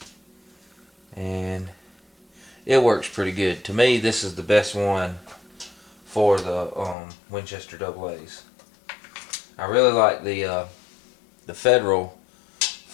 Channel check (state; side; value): drops out; right; at 7.0 s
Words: And it works pretty good. To me, this is the best one for the Winchester AA's. I really like the Federal